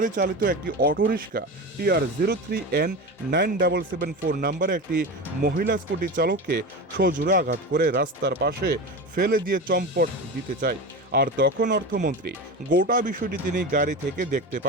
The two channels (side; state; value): both; normal; correlation 0.25